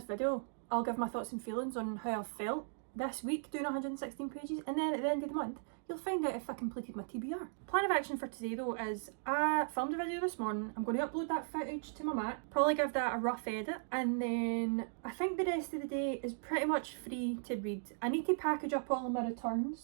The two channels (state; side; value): silent; left; digital silence